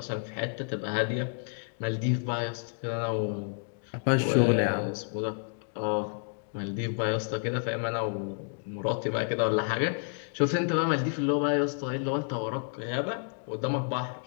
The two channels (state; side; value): silent; right; 58 dB below the other